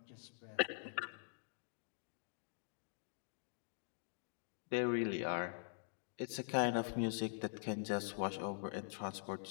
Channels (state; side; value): silent; right; digital silence